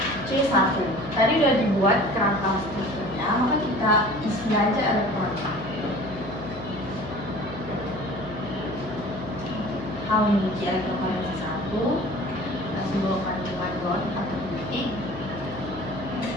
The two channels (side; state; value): left; noise; hum, 12 dB below the sound